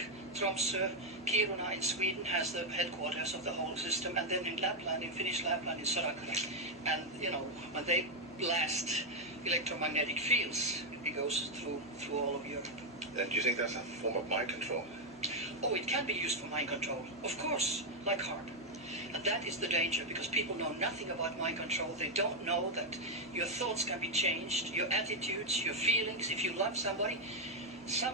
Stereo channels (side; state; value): both; normal; correlation 0.03